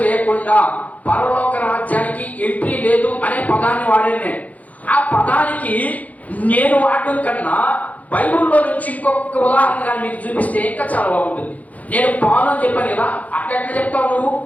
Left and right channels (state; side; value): late; right; 0.074 ms